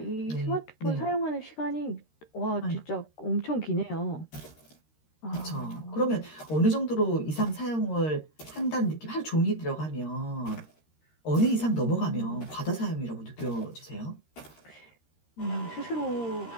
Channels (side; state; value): right; late; 13 ms